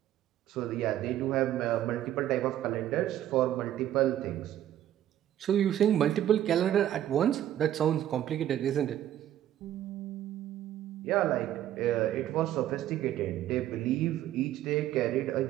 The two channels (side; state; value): left; quieter; 12.0 dB